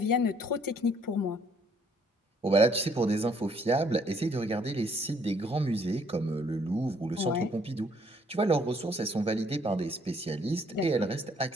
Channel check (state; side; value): normal; both; correlation 0.65